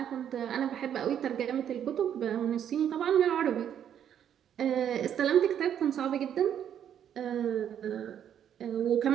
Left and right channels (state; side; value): quieter; left; 9.5 dB